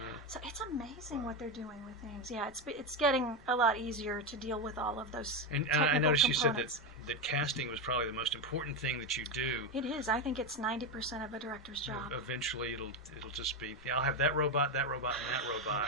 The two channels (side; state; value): both; normal; correlation 0.11